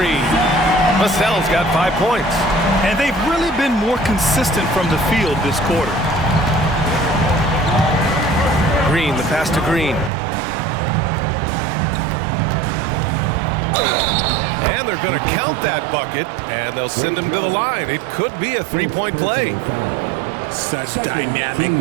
Vassell's got 5 points. And they've really been more consistent from the field this quarter. Green, the pass to Green. And they're going to count that bucket, and they'll send him to the line. It could be a 3-point play. Such dynamic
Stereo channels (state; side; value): drops out; left; at 10.1 s